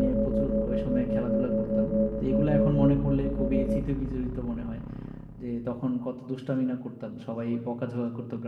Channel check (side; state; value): both; identical; correlation 1.00